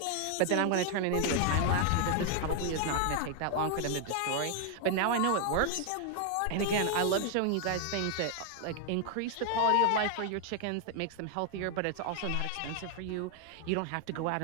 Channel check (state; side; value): different; both; correlation 0.00